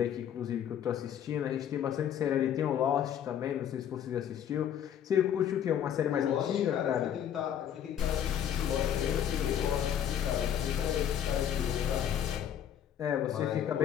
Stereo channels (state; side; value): quieter; right; 9.7 dB